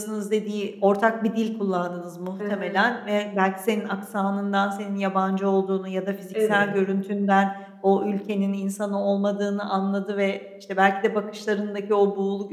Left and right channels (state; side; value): identical; both; correlation 1.00